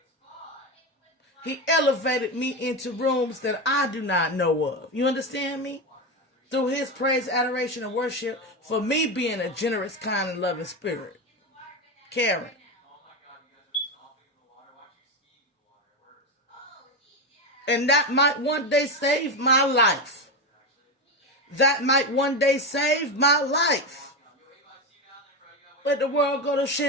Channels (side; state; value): both; normal; correlation 0.15